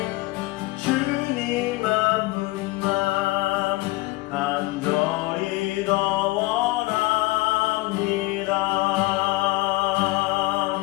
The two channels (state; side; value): quieter; right; 21.4 dB